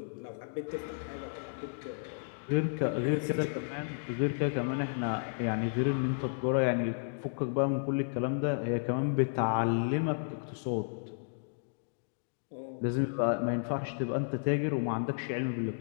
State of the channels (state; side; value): silent; right; digital silence